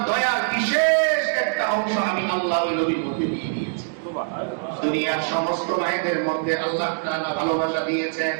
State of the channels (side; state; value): left; silent; digital silence